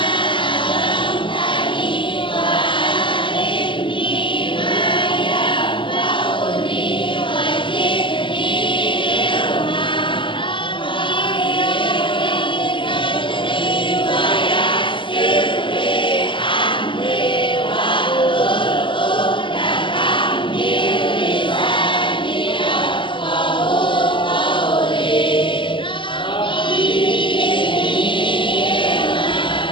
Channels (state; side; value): late; right; 0.24 ms